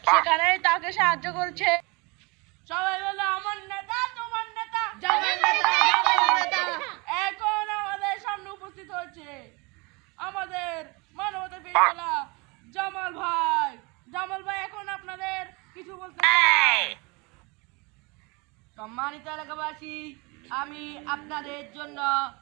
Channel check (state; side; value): quieter; left; 27.8 dB